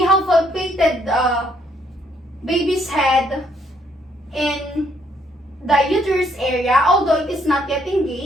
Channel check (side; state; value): both; normal; correlation 0.69